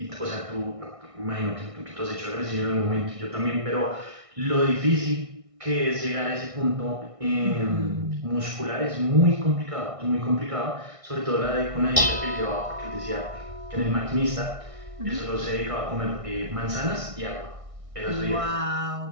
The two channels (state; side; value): late; left; 1.6 ms